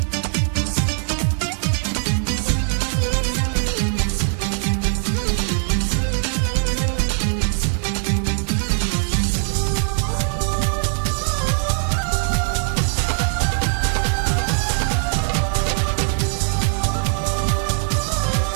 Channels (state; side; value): silent; left; 58 dB below the other